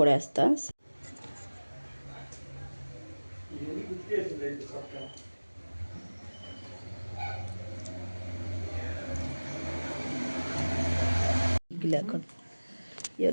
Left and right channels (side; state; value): both; inverted; correlation -1.00